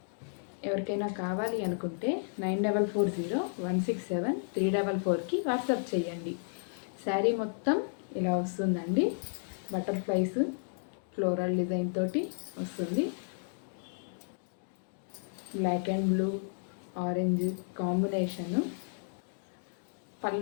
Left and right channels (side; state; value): right; silent; digital silence